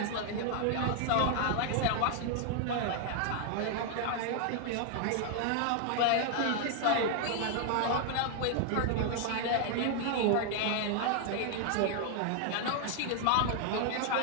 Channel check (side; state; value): both; different; correlation 0.00